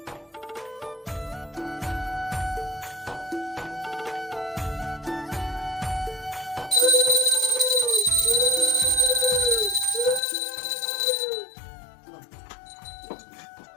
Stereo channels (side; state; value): right; drops out; at 10.2 s